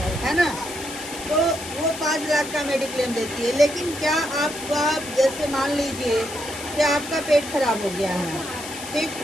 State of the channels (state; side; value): noise; left; hiss, 10 dB below the sound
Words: है ना। तो वो 5 लाख का मेडिक्लेम देती है। लेकिन क्या आप जैसे मान लीजिए कि आपका पेट खराब हो गया है, ठीक,